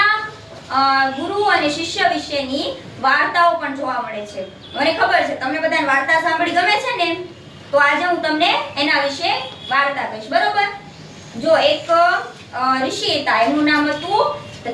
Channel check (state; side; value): identical; both; correlation 1.00